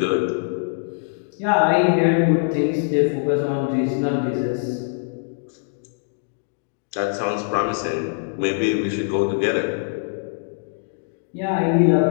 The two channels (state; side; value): silent; right; digital silence